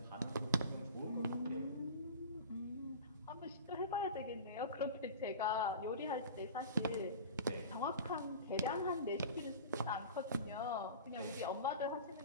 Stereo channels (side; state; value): both; inverted; correlation -0.35